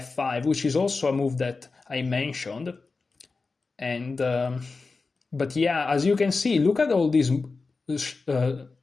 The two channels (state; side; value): quieter; right; 4.1 dB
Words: which is also a move that I mentioned. And but yeah, as you can see, look at all these,